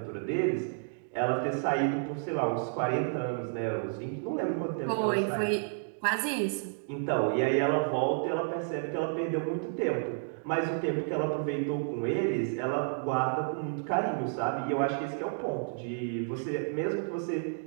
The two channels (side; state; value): left; silent; digital silence